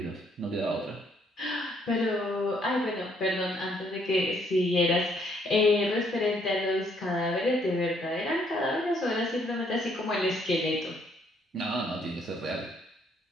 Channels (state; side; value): normal; both; correlation 0.68